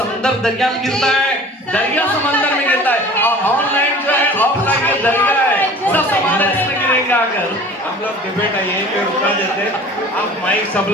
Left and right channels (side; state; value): both; normal; correlation 0.44